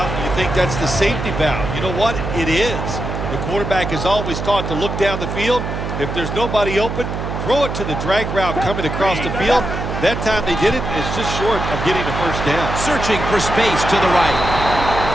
and you think that's the safety valve. You know what? It is. The quarterback is always taught to look down the field. If there's nobody open, throw it to the drag route coming across the field. That time they did it. It's just short of getting the first down. Searching for space to the right.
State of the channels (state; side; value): noise; right; hum, 4 dB below the sound